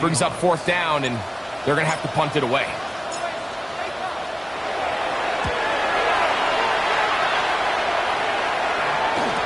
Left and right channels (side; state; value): both; identical; correlation 1.00